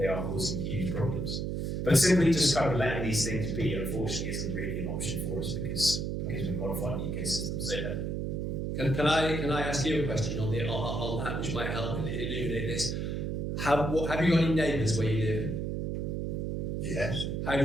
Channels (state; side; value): noise; right; hum, 2 dB below the sound